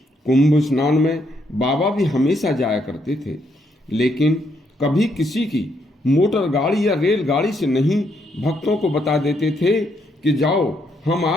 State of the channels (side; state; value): both; normal; correlation 0.75